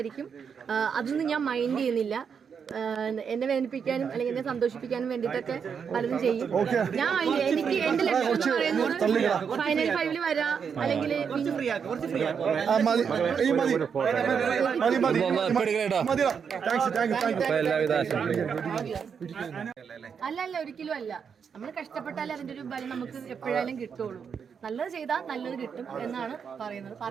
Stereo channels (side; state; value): left; quieter; 6.7 dB